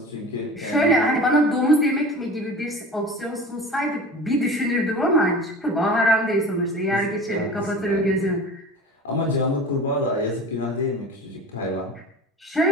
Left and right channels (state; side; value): normal; both; correlation 0.37